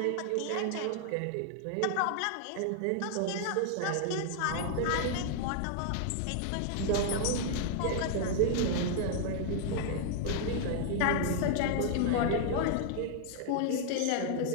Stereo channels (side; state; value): both; different; correlation 0.00